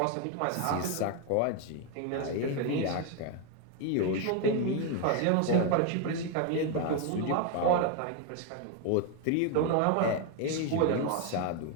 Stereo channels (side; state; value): both; different; correlation 0.01